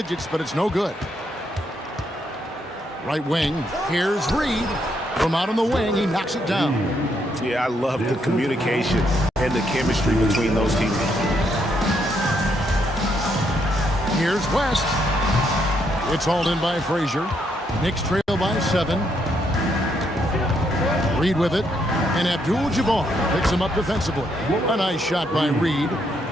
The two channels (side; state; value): both; normal; correlation 0.75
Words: but it's no good. Right wing. Here's Reed. From out on the wing, he knocks it down. Yeah, I love the communication and the chemistry between those teammates. Here's West. It's hauled in by Frazier. Knicks trail by 7. Reed with it. And Abdul-Jabbar picks him up defensively. A nice shot by Reed.